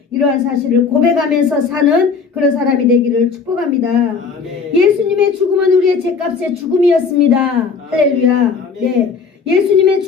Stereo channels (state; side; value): quieter; right; 5.3 dB